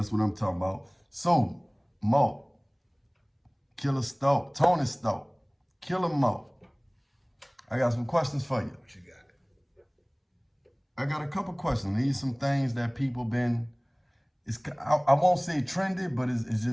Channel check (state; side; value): identical; both; correlation 1.00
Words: what I'm talking about. So, Mark, Killer Stark, Tony Stark, Killer Mark. I got some questions for you. What you got? I got a couple questions. These some things that people been, I won't say trendy, but it's